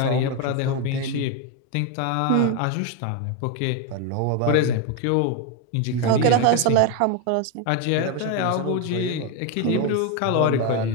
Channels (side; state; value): both; different; correlation 0.02